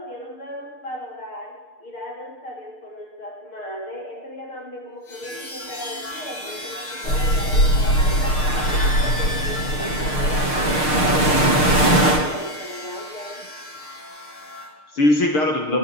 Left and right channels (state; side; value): late; right; 6.6 ms